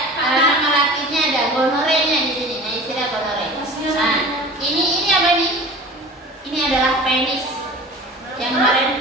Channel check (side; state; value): both; normal; correlation 0.39